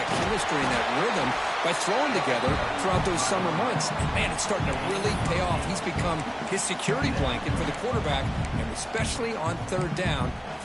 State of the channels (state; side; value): identical; both; correlation 1.00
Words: chemistry and that rhythm by throwing together throughout those summer months. And, man, it's starting to really pay off. He's become his security blanket for the quarterback, and especially on third down,